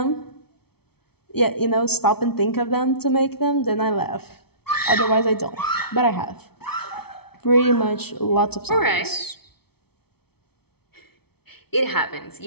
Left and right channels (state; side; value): late; right; 0.96 ms